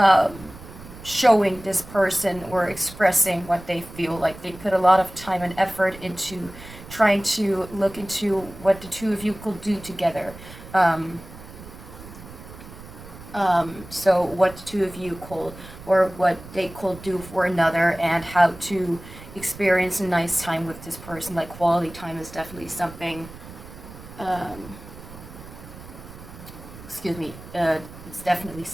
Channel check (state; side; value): noise; right; rumble, 16 dB below the sound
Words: showing this person or expressing what they feel. Like they put a lot of time and effort into trying to look into what the two of you could do together. So what the two of you could, or what they could do for another, and how to experience a nice time with this person. Like quality time is definitely something, it's definitely